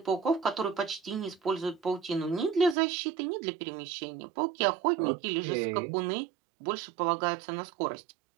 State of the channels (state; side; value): drops out; left; at 2.8 s